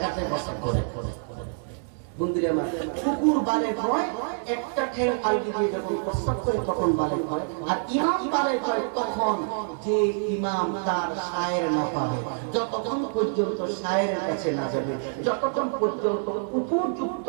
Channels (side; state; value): left; silent; digital silence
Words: হাঁটতে বসত করে বন্ধুরা আমার কুকুর বালেগ হয় একটা ঠেল আলগি দিয়ে যখন প্রস্তাব করে তখন বালেগ হয় আর ইমাম বালেগ হয় তখন যে ইমাম তার শায়ের না পাবে যতক্ষণ পর্যন্ত শায়ের কাছে না যাবে যতক্ষণ পর্যন্ত উপযুক্ত